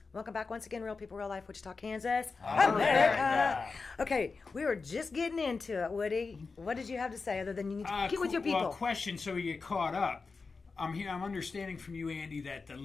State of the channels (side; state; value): right; quieter; 4.4 dB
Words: Welcome back once again, Real People, Real Life, Wichita, Kansas, America. Okay, we were just getting into it, Woody. What did you have to say other than you need to get with your people? Well, question so we get caught up. I'm understanding from you, Andy, that the